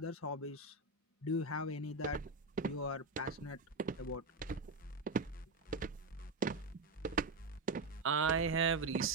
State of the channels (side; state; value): left; quieter; 3.2 dB